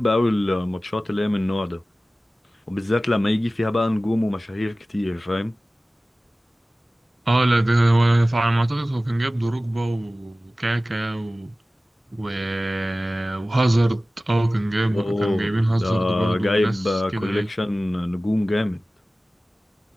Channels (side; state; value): both; normal; correlation 0.97